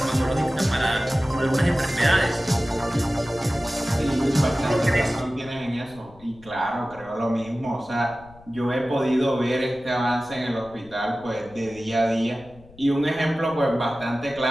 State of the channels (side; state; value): left; noise; rumble, 24 dB below the sound